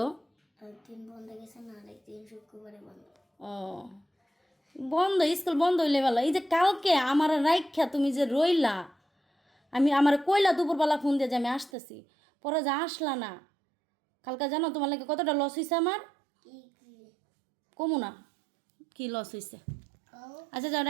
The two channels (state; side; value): drops out; left; at 11.7 s